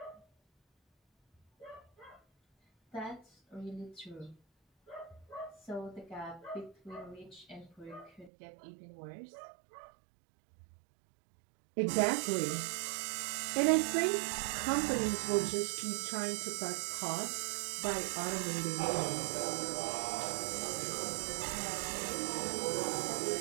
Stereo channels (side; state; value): left; drops out; at 8.3 s